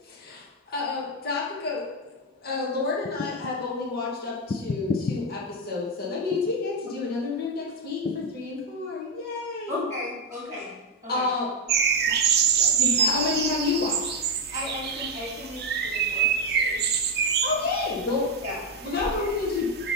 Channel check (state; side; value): normal; both; correlation 0.05